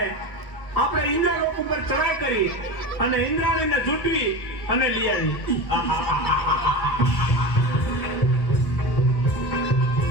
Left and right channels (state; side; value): late; right; 1.5 ms